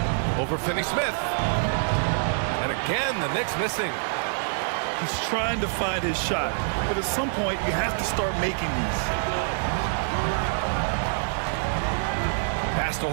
Over Finney-Smith. And again, the Knicks missing. He's trying to find his shot, but at some point you have to start making these. Pass to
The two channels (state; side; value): silent; left; 59 dB below the other